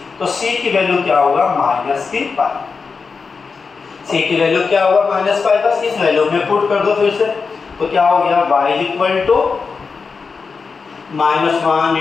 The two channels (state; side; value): quieter; right; 5.0 dB